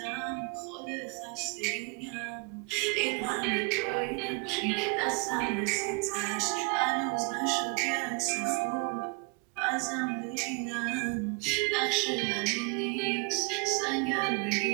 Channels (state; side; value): quieter; left; 31.6 dB